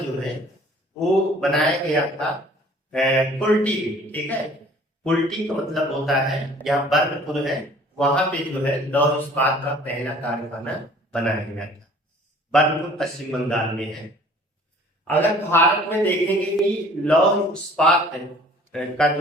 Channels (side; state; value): both; normal; correlation 0.52